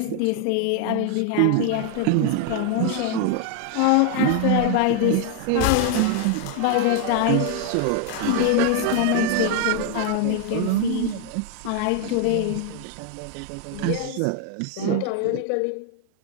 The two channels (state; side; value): different; both; correlation 0.00